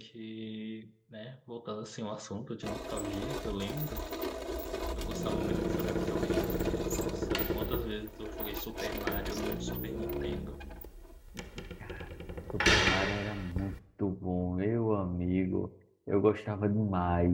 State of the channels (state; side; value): identical; both; correlation 1.00